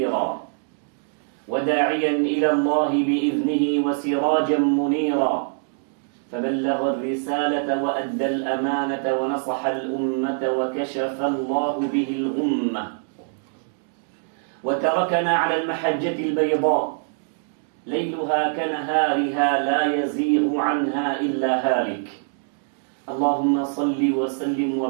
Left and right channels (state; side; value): silent; left; digital silence